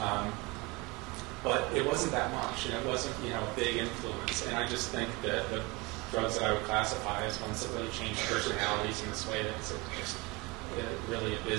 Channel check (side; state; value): left; quieter; 25.2 dB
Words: But it wasn't that much, and it wasn't, a big influence. And I just think that the drugs that I would classify as ones that really change personalities in this way that's just really